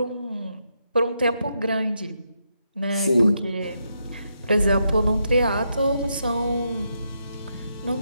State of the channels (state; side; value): inverted; both; correlation -0.81